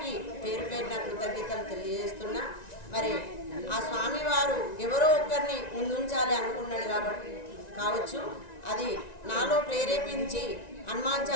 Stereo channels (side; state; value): right; late; 1.9 ms